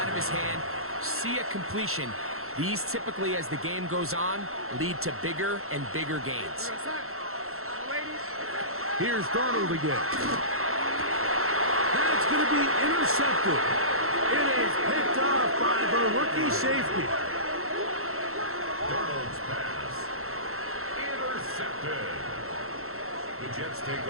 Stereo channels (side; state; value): left; late; 0.62 ms